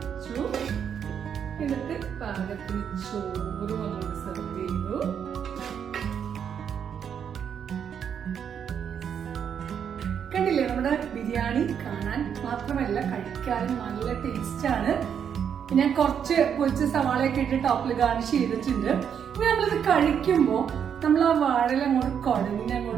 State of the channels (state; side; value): quieter; left; 8.0 dB